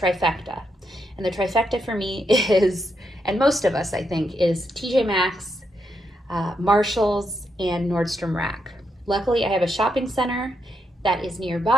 And the trifecta for me is, and most of us I think, is TJMaxx, Marshalls, and Nordstrom Rack. Luckily, I have a shopping center that is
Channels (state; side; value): normal; both; correlation 0.81